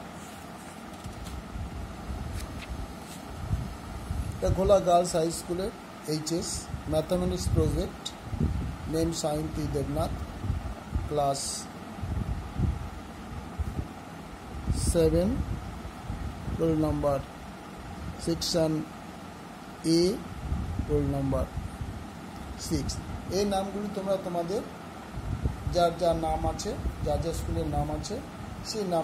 এটা ঘোলা গার্লস হাই স্কুলের HS mathematics project, name Sayanti Debnath, class 7, roll number section A, roll number 6। এই নামগুলি তোমরা তোমাদের যার যার নাম আছে, যার যার স্কুলের নাম আছে সেই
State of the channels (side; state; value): both; identical; correlation 1.00